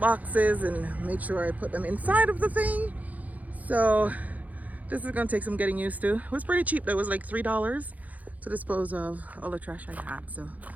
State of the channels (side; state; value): left; late; 0.077 ms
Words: and made sure I put them inside of the thing. So this is gonna take some getting used to. It was pretty cheap though. It was like $3 to dispose of all the trash I had. So